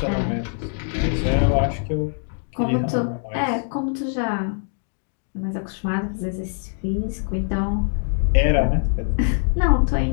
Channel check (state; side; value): silent; right; 62 dB below the other